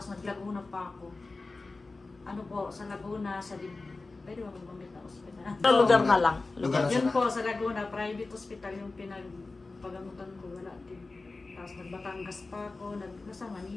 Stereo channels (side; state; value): right; quieter; 3.5 dB